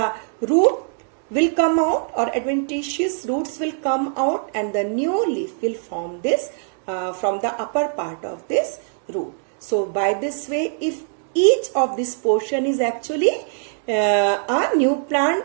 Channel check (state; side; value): silent; left; 63 dB below the other